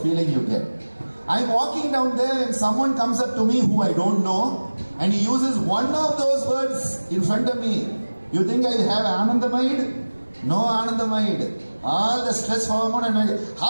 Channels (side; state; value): both; inverted; correlation -1.00